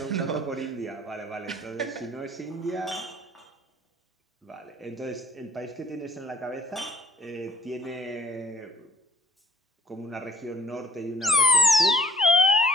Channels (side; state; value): both; normal; correlation 0.59